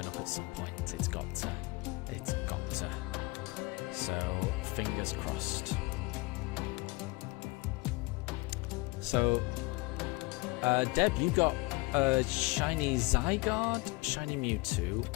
up at some point. It's got to. So fingers crossed. So Deb, you got shiny Zygarde, shiny Mewtwo,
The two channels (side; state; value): right; quieter; 24.1 dB